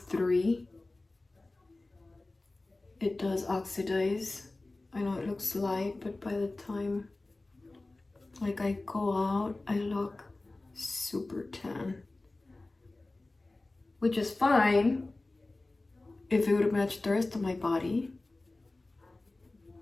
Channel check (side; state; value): right; quieter; 3.0 dB